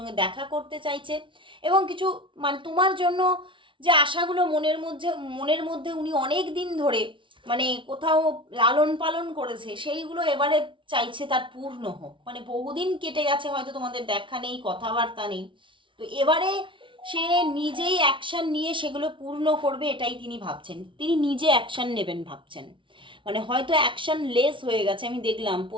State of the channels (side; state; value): left; late; 0.25 ms